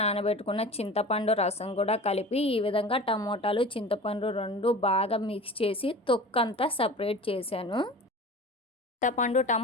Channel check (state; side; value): normal; both; correlation 0.37